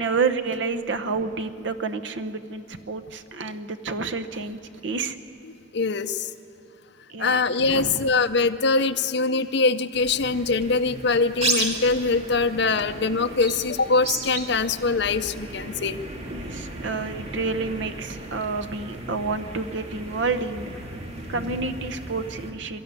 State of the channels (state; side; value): normal; both; correlation -0.08